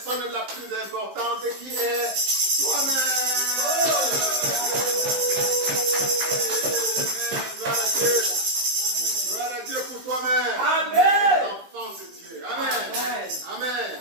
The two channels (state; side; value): late; left; 15 ms